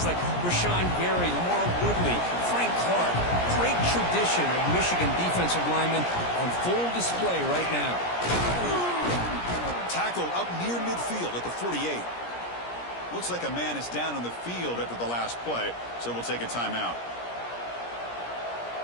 like Rashawn Gary, Lamar Woodley, Frank Clark. Great tradition of Michigan defensive linemen on full display right now. Tackle up near midfield at the 48. Looks like a man is down on the field after the last play, so we'll take a timeout.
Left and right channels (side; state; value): right; late; 17 ms